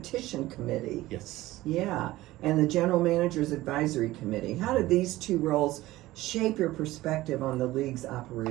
committee. Yes. Yeah, and the general manager's advisory committee. How did these two roles shape your perspective on the league's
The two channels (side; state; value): left; quieter; 17.2 dB